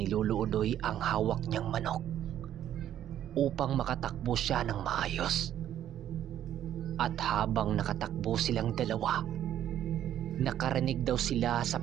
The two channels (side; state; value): left; quieter; 11.1 dB